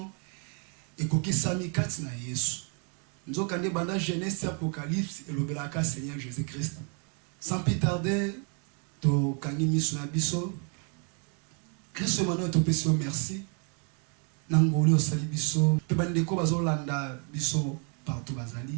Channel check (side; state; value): left; quieter; 38.9 dB